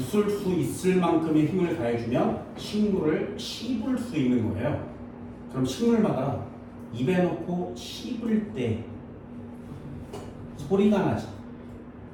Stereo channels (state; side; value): identical; both; correlation 1.00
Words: 수 있을 만큼의 힘을 가해주면 식물을 씹을 수 있는 거예요. 그럼 식물마다 입에 넣고 씹을 때 소리가 나지.